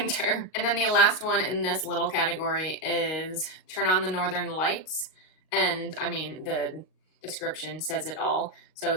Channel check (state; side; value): late; right; 38 ms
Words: And then the last one in this little category is Turn on the Northern Lights. And I mean, the description says it all. So